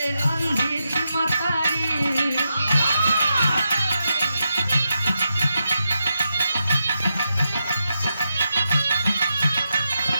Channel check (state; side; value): inverted; both; correlation -0.86